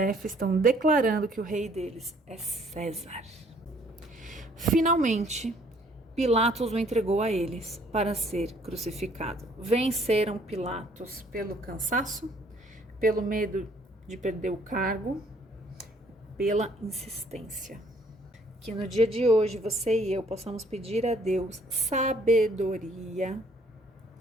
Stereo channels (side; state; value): both; normal; correlation 0.61